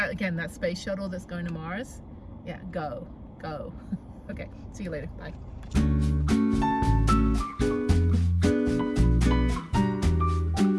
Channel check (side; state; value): both; identical; correlation 1.00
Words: again, that space shuttle that's going to Mars. Yeah, go. Okay, see you later. Bye.